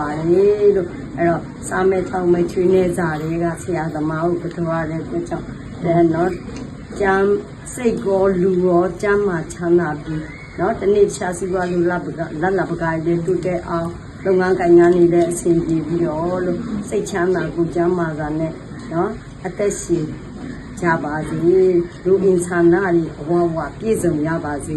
ါတယ်လို့အဲ့တော့စာမဲချောင်းမဲချွေးနေကြတွေကဆရာသမားကိုကြောရတဲ့အတွက်ကြောင့်နော်ကျမ်းစိတ်ကောလူရောကျမ်းမှာချမ်းသာပြီးနော်တနေ့ရှားစီပွားလူလက်ပကားလေးတူတဲ့အောင်လုပ်ငန်းကိုင်ငန်းနေတဲ့အဆင်ပြေပြီးတော့လို့စိတ်ချမ်းသာကိုကျမ်းမာတာနဲ့နော်အသက်ရှင်ကြပါစေလူအင်ဆန္ဒတွေအဝဝပြည့်စုံရပါစေ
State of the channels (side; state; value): both; identical; correlation 1.00